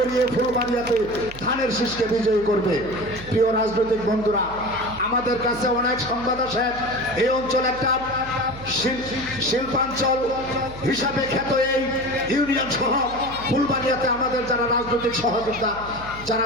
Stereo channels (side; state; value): right; noise; hum, 15 dB below the sound